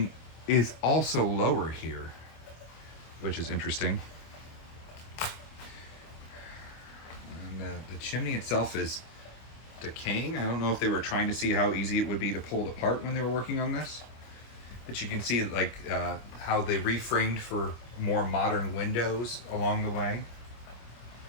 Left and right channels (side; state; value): right; late; 26 ms